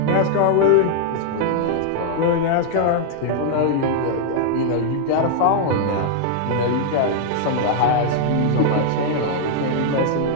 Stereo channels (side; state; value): both; different; correlation 0.00